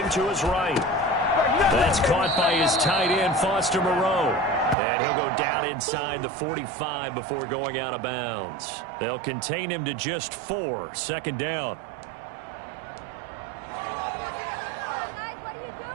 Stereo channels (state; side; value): drops out; left; at 4.8 s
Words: to his right. That's caught by his tight end, Foster Moreau. And he'll go down inside the 45 before going out of bounds. They'll contain him to just 4. 2nd down.